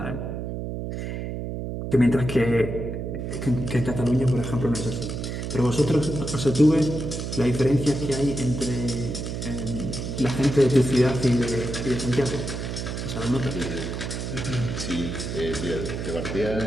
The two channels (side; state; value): right; noise; hum, 5 dB below the sound